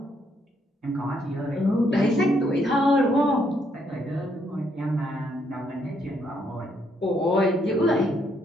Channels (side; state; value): both; normal; correlation 0.73